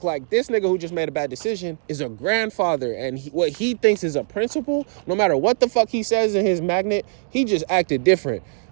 Like, this nigga who just made a bad decision is a grandfather. And what he thinks is a principle, no matter what the fuck he says in his magnet, he just acted different.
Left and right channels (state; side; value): silent; left; digital silence